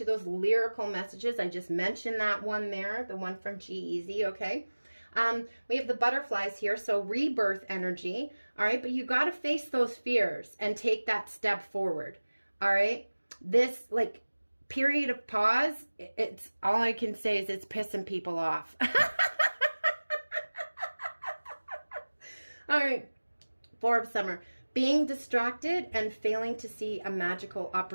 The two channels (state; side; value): inverted; both; correlation -1.00